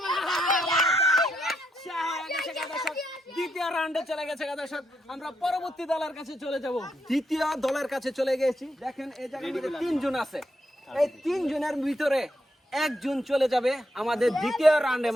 পারে, দ্বিতীয় রাউন্ডে চলে গেছে। দর্শক আমরা পরবর্তী দলের কাছে চলে যাব। দ্বিতীয় দলের কাছে চলে গেছি। দেখেন এই জায়গার মধ্যে 3 জন আছে, এই 3 জনের ভিতরে একজন চলে যাবে আমাদের দ্বিতীয় রাউন্ডে,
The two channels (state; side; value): normal; both; correlation 0.80